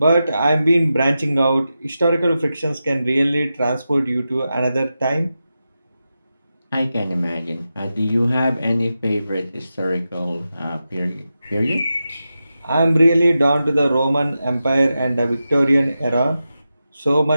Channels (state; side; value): inverted; both; correlation -0.91